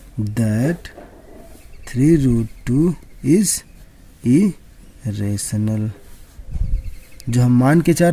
that 3 root 2 is irrational। जो हम मान के चल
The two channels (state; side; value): identical; both; correlation 1.00